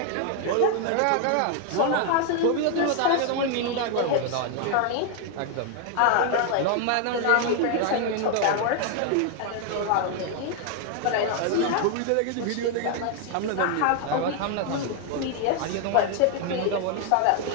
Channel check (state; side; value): different; both; correlation 0.00